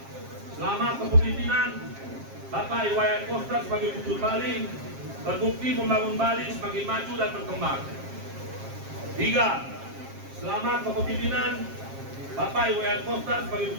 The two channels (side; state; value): left; late; 7.5 ms